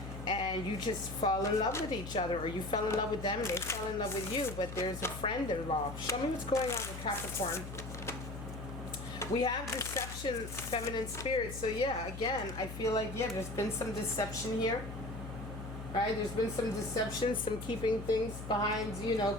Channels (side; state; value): left; noise; hum, 9 dB below the sound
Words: and you just fall in love with each other, or you fell in love with them and they fell in love with you, but there's a friend involved. Show me what's going on with Capricorn. We have deception, feminine spirit. So yeah, again, I feel like, yeah, there's been some deception here. Right? There's been some deception, some keeping things behind,